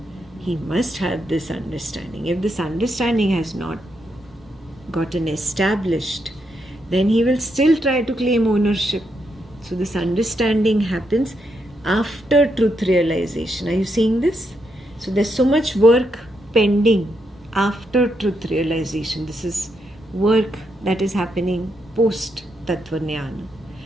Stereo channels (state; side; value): normal; both; correlation 0.80